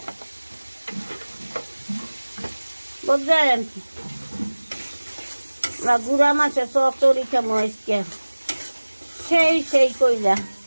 বুঝলেন, আমরা গুড়া মাছের চচ্চড়ি খামো আজকে, সেই কইলা।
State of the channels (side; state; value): both; inverted; correlation -1.00